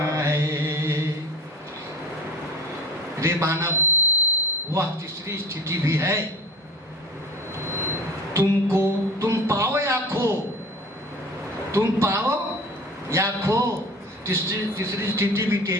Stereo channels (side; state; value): both; normal; correlation 0.37